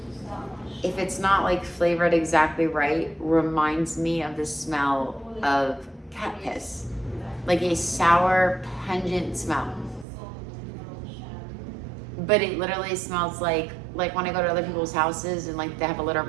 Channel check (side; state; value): left; drops out; at 10.1 s